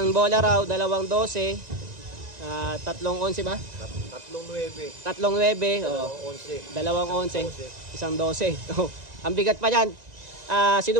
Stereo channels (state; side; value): late; left; 1.9 ms